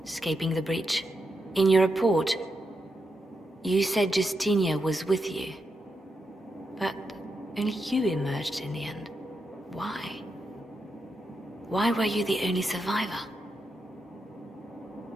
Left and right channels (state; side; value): normal; both; correlation 0.85